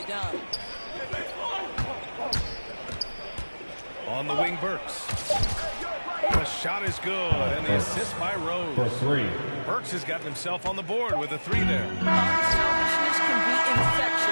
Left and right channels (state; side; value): inverted; both; correlation -1.00